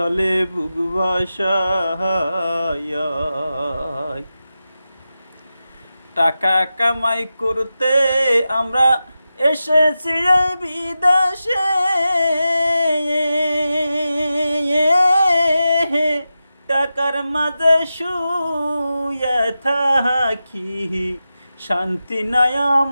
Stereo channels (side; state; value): both; inverted; correlation -0.92